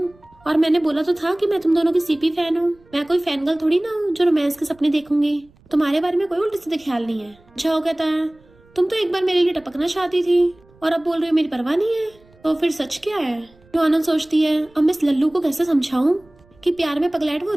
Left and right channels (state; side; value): noise; right; rumble, 30 dB below the sound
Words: और मैंने बोला तो था कि मैं तुम दोनों की सीपी फैन हूँ, मैं कोई फैन गर्ल थोड़ी ना हूँ जो रोमांस के सपने देखूंगी, तुम्हारे बारे में कोई उल्टे सीधे ख्याल नहीं है। झाओ कहता है तुम तो एक बार मेरे लिए टपकना चाहती थी और अब बोल रही हो मेरी परवाह नहीं है, तो फिर सच क्या है। नुआनोन सोचती है अब मैं इस लल्लू को कैसे समझाऊं कि प्यार में पगलैट वो